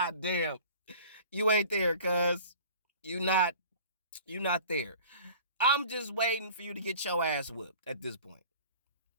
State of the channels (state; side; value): inverted; both; correlation -0.44